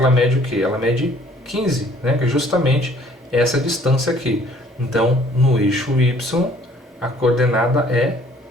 mede o quê? Ela mede 15, né? Que é justamente essa distância aqui. Então no eixo y a coordenada é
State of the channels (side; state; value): both; normal; correlation 0.58